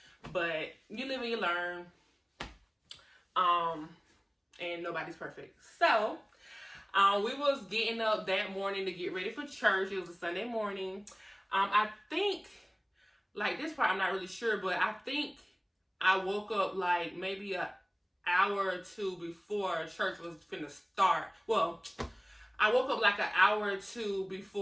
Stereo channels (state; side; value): identical; both; correlation 1.00